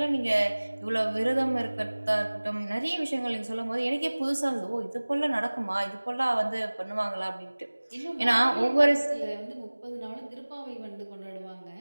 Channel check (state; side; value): inverted; both; correlation -1.00